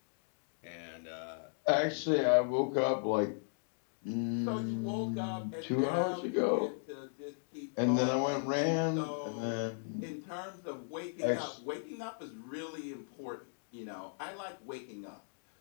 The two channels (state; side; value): silent; right; digital silence